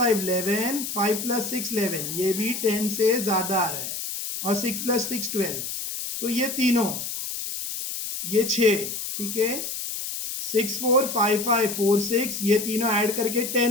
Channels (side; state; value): left; noise; hiss, 5 dB below the sound